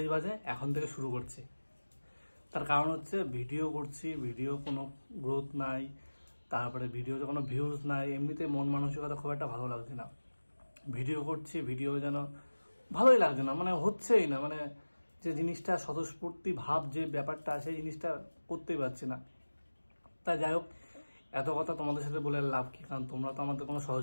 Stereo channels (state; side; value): inverted; both; correlation -1.00